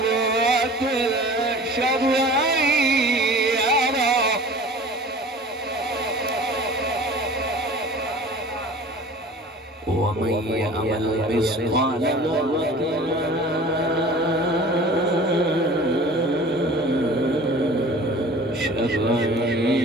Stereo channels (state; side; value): normal; both; correlation 0.43